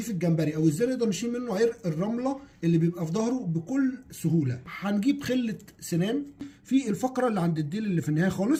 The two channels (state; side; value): identical; both; correlation 1.00